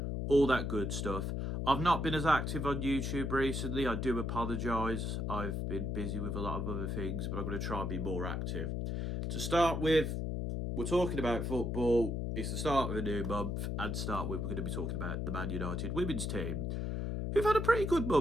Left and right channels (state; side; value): noise; left; hum, 1 dB below the sound